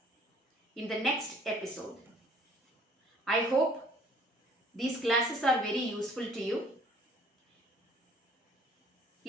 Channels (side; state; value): both; normal; correlation 0.57